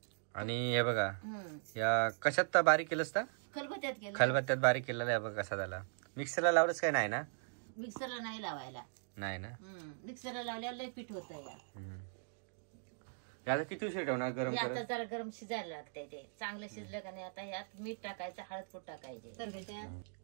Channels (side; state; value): left; silent; digital silence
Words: आणि हे बघा या कशात तर बारीक केलंस का? खलबत्त्यात केलं. खलबत्त्यात बारीक केलेला आहे बघा कसा झाला. मिक्सरला लावलंच काय नाही ना? मिक्सरला नाही लावायला. नाही ना. मिक्सरला लावल्यावर लय पीठ होतं या. आता किती उशीर ठेवणार गरम हे आता करत? जरा गरम शिजायला लागतंय, ते चांगलं शिजलं का नाही आता ह्यात मीठ टाकायचं, हळद पूड टाकायचे. तर